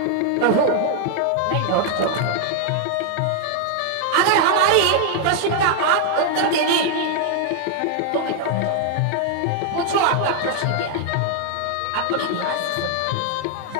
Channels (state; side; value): different; both; correlation 0.00